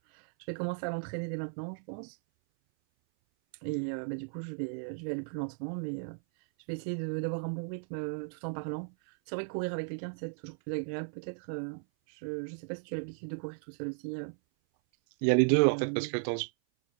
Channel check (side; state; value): left; silent; 54 dB below the other